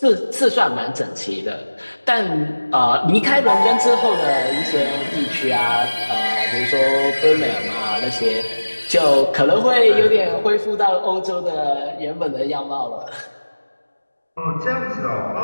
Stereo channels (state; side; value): inverted; both; correlation -1.00